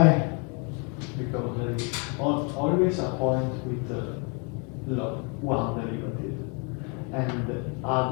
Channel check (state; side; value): quieter; right; 35.1 dB